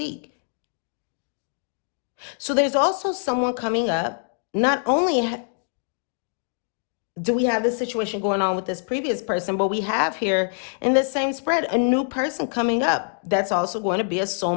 So there's also someone coming up. Not only do we have this situation going on with this previous person, but we have here in this same spread a new person coming up that's also going to be a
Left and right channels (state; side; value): silent; right; 62 dB below the other